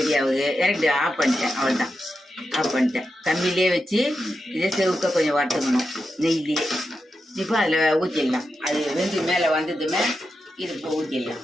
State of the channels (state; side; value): normal; both; correlation 0.88